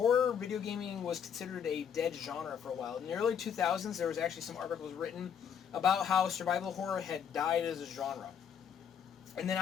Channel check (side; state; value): right; quieter; 7.9 dB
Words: video gaming was considered a dead genre for a while. In the early 2000s, there was actually some articles written about how survival horror had died as a genre. And then